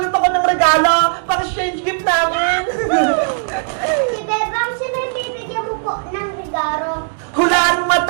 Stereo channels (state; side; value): silent; left; digital silence